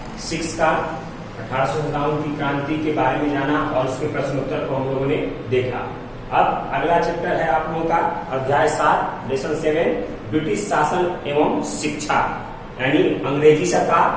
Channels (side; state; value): both; identical; correlation 1.00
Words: 6 का 1857 की क्रांति के बारे में जाना और उसके प्रश्नोत्तर को हम लोगों ने देखा। अब अगला चैप्टर है आप लोगों का अध्याय 7 लेसन 7 ब्रिटिश शासन एवं शिक्षा, यानी अंग्रेजी